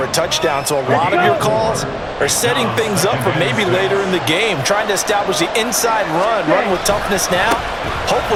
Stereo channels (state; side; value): identical; both; correlation 1.00